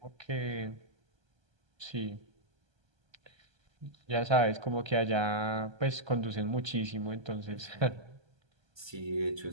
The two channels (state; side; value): late; left; 1.3 ms